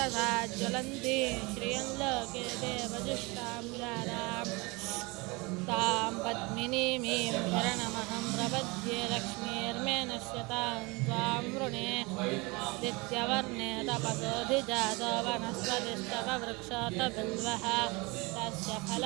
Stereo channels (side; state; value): left; quieter; 26.0 dB